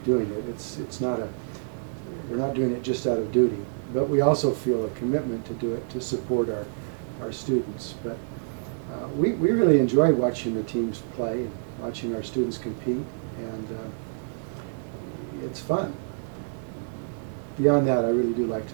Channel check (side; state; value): left; silent; digital silence